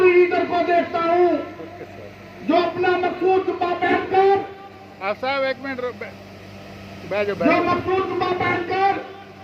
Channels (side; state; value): both; identical; correlation 1.00